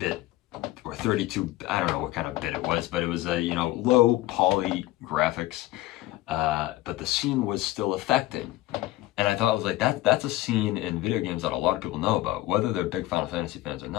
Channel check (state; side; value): quieter; right; 16.8 dB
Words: or 32, I don't know what kind of bit it was, but it was a low poly graphics, but the scene was still affecting. And I thought, I was like, that's a scene in video games that a lot of people know about, whether they're big Final Fantasy fans or